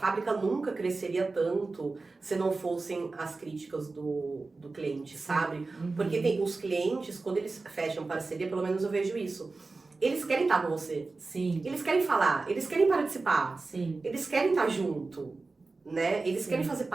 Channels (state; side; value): quieter; left; 3.7 dB